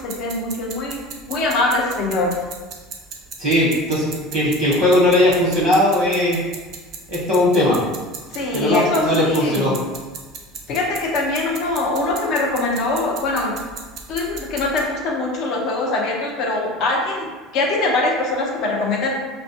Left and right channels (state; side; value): normal; both; correlation 0.36